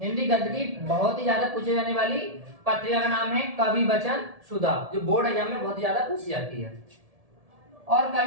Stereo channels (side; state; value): left; late; 1.7 ms